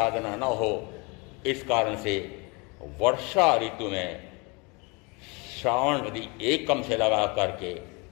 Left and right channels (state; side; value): quieter; right; 29.2 dB